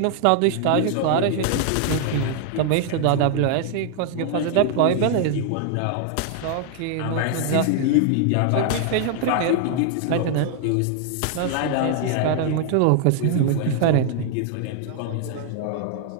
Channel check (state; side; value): different; both; correlation 0.00